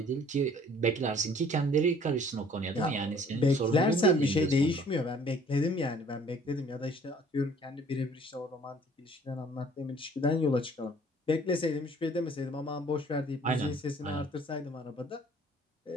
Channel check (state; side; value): normal; both; correlation 0.55